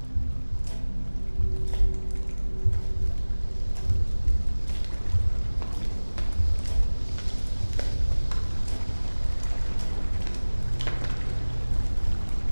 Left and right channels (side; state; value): both; inverted; correlation -1.00